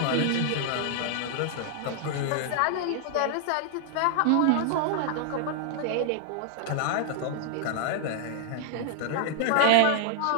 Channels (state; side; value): different; both; correlation -0.01